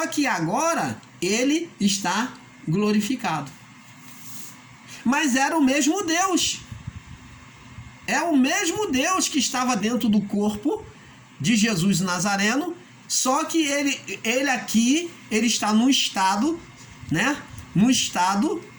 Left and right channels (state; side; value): identical; both; correlation 1.00